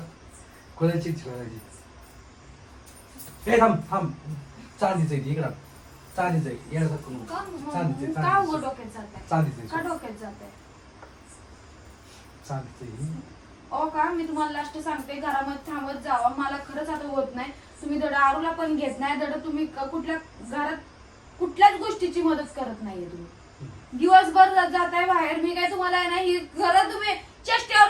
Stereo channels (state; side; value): identical; both; correlation 1.00